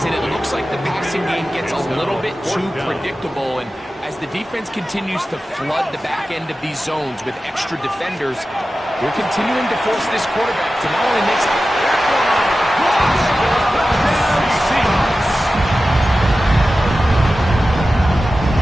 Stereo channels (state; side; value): normal; both; correlation 0.94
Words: and it looks like the passing game gets a little bit too predictable. And as the defense continues to flood the back end of these zones with extra defenders, they're continuing to force this quarterback to not only make Seahawks.